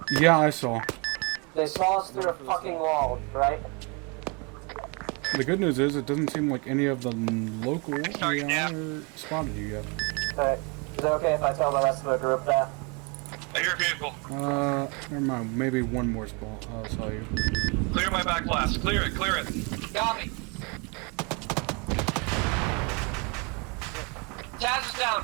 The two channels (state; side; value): quieter; left; 32.0 dB